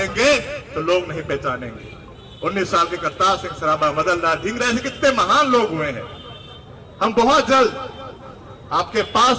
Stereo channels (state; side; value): identical; both; correlation 1.00